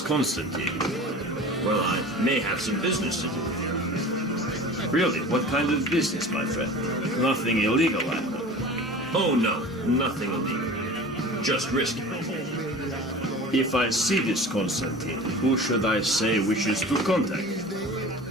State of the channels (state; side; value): normal; both; correlation 0.38